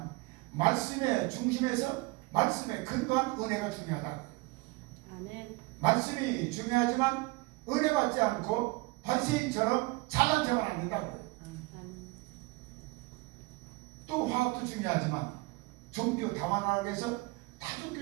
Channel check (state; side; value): quieter; left; 23.9 dB